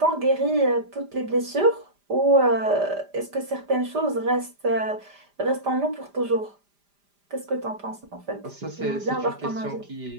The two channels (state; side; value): late; left; 5.0 ms